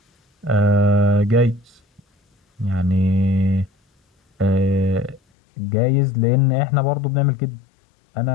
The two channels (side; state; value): right; drops out; at 5.2 s